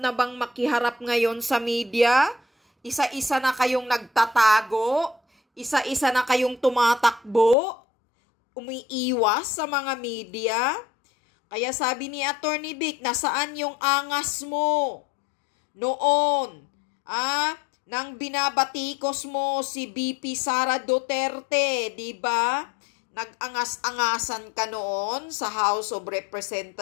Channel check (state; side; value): drops out; right; at 7.6 s